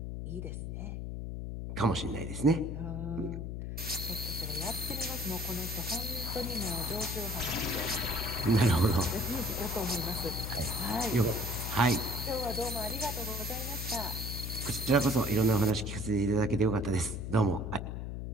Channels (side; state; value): left; noise; hum, 5 dB below the sound